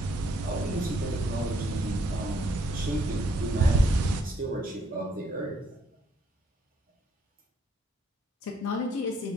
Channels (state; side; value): normal; both; correlation 0.70